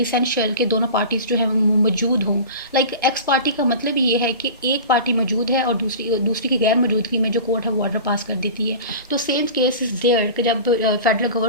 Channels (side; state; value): both; inverted; correlation -0.35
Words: कि दोनों पार्टीज जो है मौजूद हों। लाइक एक्स पार्टी का मतलब ये है कि एक पार्टी मौजूद है और दूसरी की गैर मौजूदगी में जो कोर्ट है वो ऑर्डर पास कर देती है। तो सेम केस इज़ देयर कि जब फेडरल